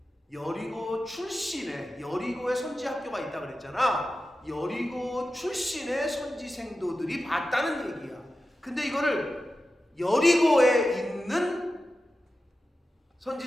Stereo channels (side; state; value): both; normal; correlation 0.93